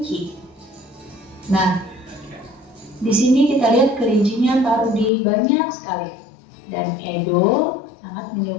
Nah, di sini kita lihat kelincinya Pak Rudi banyak sekali. Dan Edo sangat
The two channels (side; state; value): right; drops out; at 5.1 s